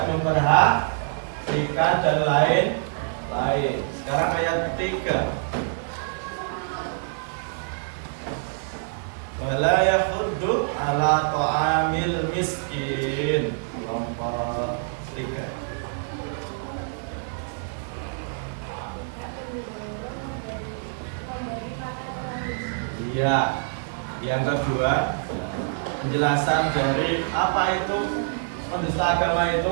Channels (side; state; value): left; silent; digital silence